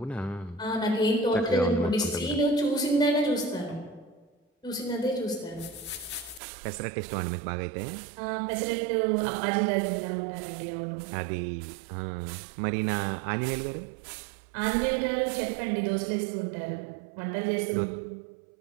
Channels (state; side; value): drops out; left; at 6.4 s